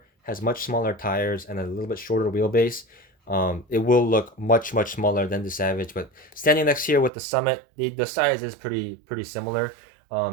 has much smaller tires and a little bit shorter wheelbase, it will look much smaller than the Savage. But standing next here with the Summit, the size is pretty similar,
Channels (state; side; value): drops out; left; at 7.1 s